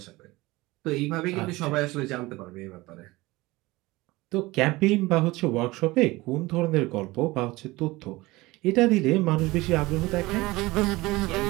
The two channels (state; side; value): quieter; left; 20.7 dB